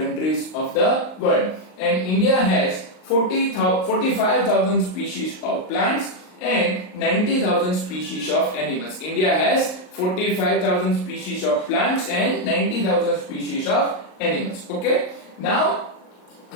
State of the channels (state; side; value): late; right; 38 ms